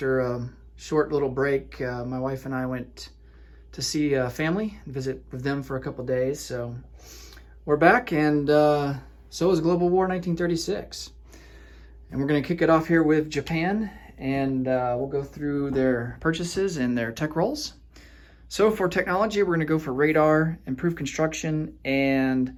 a short little break. My wife and I went to see family, visit with them for a couple days. So we're back, and so is Global War 1936. And we're going to kick it off here with Japan, and we'll go through their purchases and their tech rolls. So for technology, we're going to go for radar, improved construction, and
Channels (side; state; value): both; identical; correlation 1.00